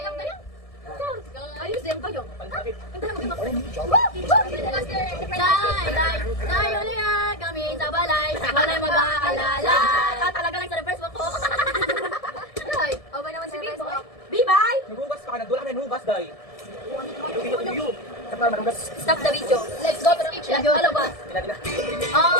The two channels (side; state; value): right; late; 1.7 ms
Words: Ayos din kayo. Day, uliya kami sa balay. Walay mag-aalala. Talaga lang sa first walk ko. Day, okay naman si Facebook. Bye-bye! Naghugas pa ka, nagdula kami naghugas, day. Stop the video. Let's go to the kitchen. Hello, boss.